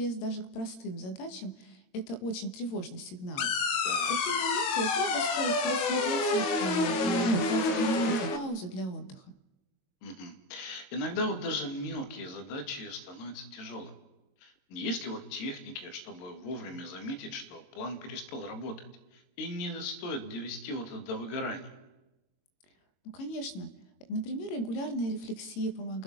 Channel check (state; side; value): late; right; 22 ms